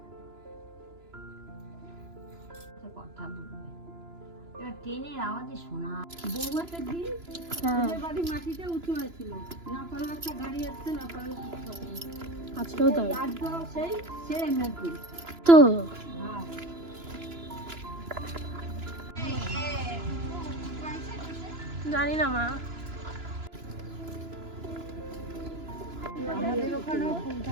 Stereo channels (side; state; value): left; late; 2.9 ms